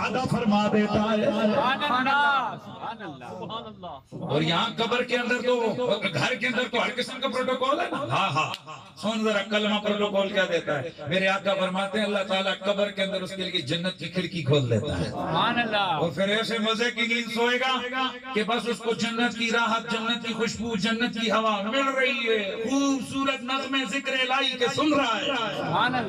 فرما دیتا ہے۔ سبحان اللہ، سبحان اللہ، سبحان اللہ۔ اور یہاں قبر کے اندر تو گھر کے اندر تو ہر قسم کا پروٹوکول ہے نا۔ ہاں ہاں، سن ذرا کلمہ پروٹوکول کیا دیتا ہے۔ میرے آقا فرماتے ہیں اللہ تعالیٰ قبر کے اندر اس کے لیے جنت کی کھڑکی کھول دیتا ہے، سبحان اللہ۔ اور پھر ایسے مزے کی نیند سوئے گا کہ بس اس کو جنت کی راحت، جنت کی خوشبو، جنت کی ہوا مل رہی ہے، خوبصورت نغمے ذکر الہی کے سن رہا ہے۔ سبحان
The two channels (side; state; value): both; identical; correlation 1.00